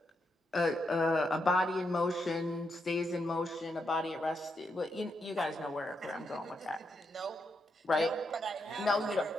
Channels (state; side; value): normal; both; correlation 0.82